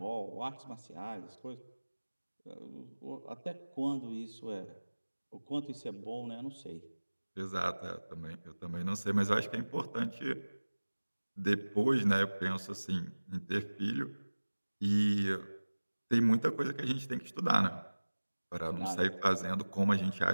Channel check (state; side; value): inverted; both; correlation -1.00